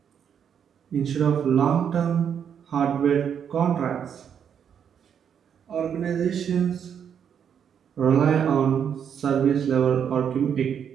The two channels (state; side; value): quieter; left; 8.1 dB